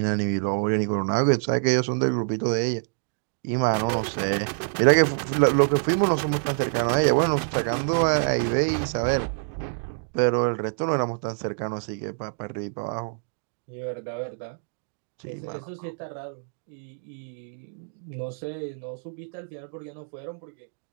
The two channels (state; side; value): silent; left; digital silence